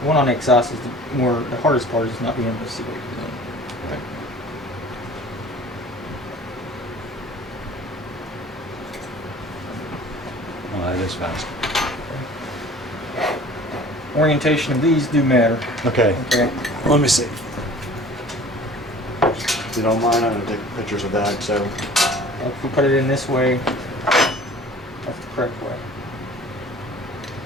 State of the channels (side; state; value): both; normal; correlation 0.46